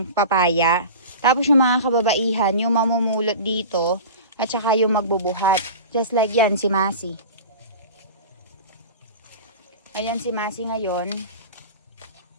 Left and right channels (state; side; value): inverted; both; correlation -0.34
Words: papaya. Tapos yung mga kababaihan yung mamumulot dito at saka yung magbubuhat. Just like yan, si Masi. Ayan si Masi ngayon.